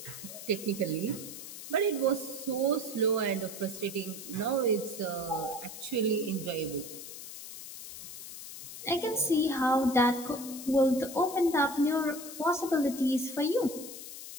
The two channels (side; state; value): left; noise; hiss, 11 dB below the sound